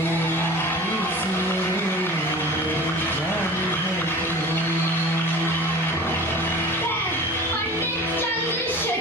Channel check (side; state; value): both; normal; correlation 0.39